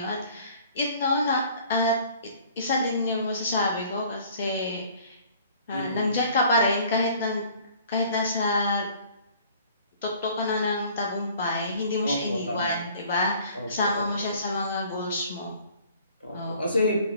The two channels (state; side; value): inverted; both; correlation -0.53